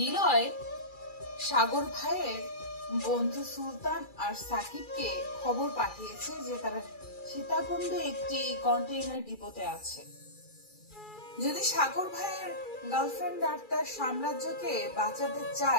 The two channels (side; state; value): right; late; 2.3 ms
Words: সাগর ভাইয়ের বন্ধু সুলতান আর সাকিবকে খবর পাঠিয়েছে যে তারা সীতাকুণ্ডে একটি কন্টেইনার ডিপোতে আছে। যদি সাগর ভাইয়ের গার্লফ্রেন্ড আর তার সাম্রাজ্যকে বাঁচাতে